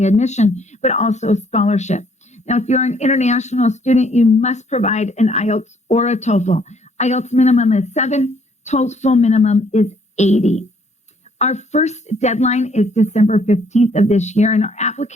admission, but also scholarship. Now, if you're an international student, you must provide an IELTS or a TOEFL. IELTS minimum is 7, TOEFL minimum is 80. Our first deadline is December 15th of this year, and our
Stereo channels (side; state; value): both; normal; correlation 0.65